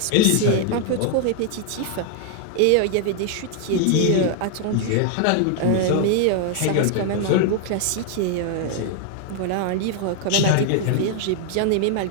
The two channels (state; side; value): different; both; correlation 0.00